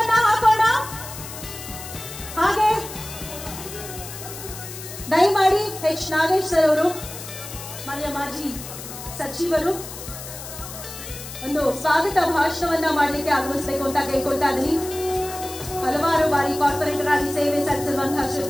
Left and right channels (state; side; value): noise; left; hiss, 11 dB below the sound